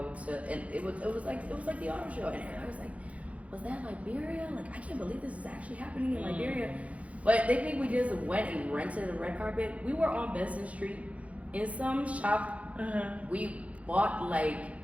was like the auto show, and I was like, was that Liberia? Like, I can't believe this is actually happening in Liberia. But they think we just went and rented a red carpet. We were on Benson Street in some shop. We bought like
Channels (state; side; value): late; left; 0.065 ms